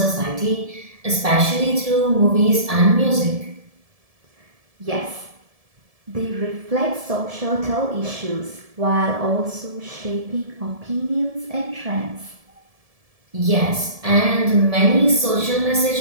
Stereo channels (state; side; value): late; left; 1.7 ms